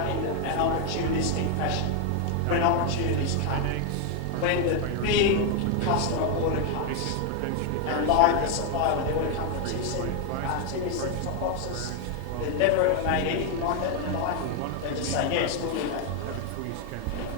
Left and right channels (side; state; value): both; different; correlation 0.00